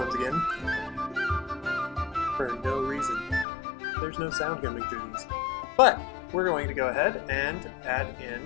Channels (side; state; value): right; drops out; at 3.5 s